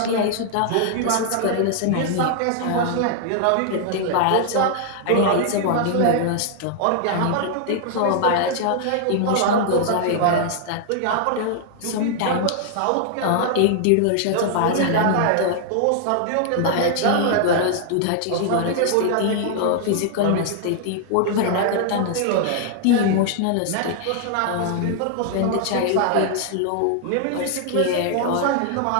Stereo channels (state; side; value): different; both; correlation -0.01